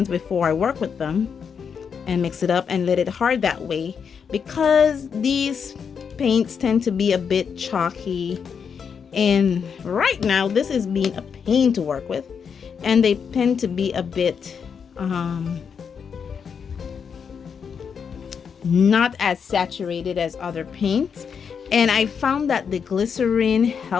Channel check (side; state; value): right; quieter; 6.6 dB